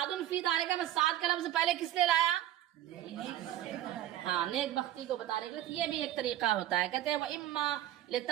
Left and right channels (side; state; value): left; quieter; 12.9 dB